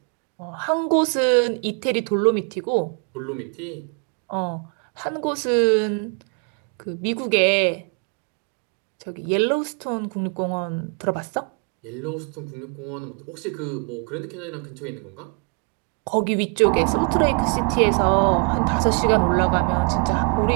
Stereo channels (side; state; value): left; quieter; 38.1 dB